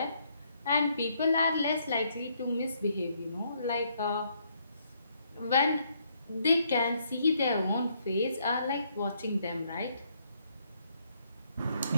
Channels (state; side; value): inverted; both; correlation -0.72